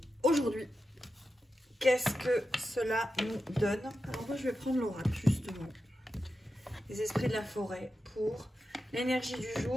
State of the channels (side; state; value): both; normal; correlation 0.90